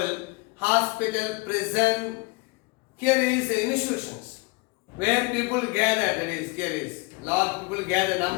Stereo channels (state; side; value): quieter; right; 26.6 dB